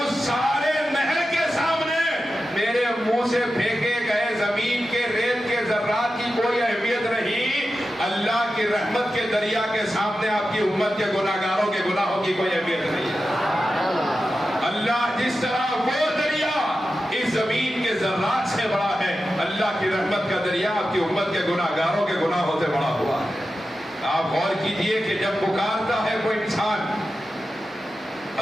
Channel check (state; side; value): normal; both; correlation 0.92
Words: سارے نہر کے سامنے میرے منہ سے پھینکے گئے زمین کے ریت کے ذرات کی کوئی اہمیت نہیں، اللہ کی رحمت کے دریا کے سامنے آپ کی امت کے گناہگاروں کے گناہوں کی کوئی اہمیت نہیں ہے۔ اللہ جس طرح وہ دریا اس زمین کے ذرات سے بڑا ہے، اللہ کی رحمت کا دریا آپ کی امت کے گناہگاروں کے گناہوں سے بڑا ہوا ہے۔ آپ غور کیجئے کہ جب پکارتا ہے کوئی انسان،